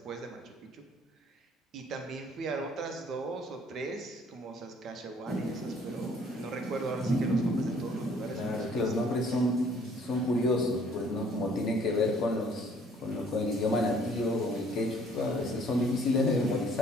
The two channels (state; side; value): normal; both; correlation 0.59